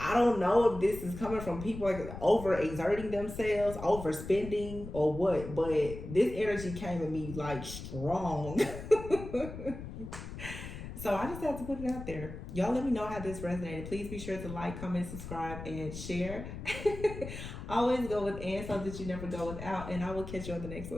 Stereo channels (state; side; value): noise; left; rumble, 10 dB below the sound